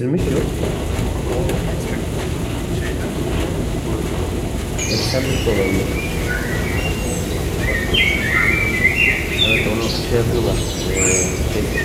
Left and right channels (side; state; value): both; identical; correlation 1.00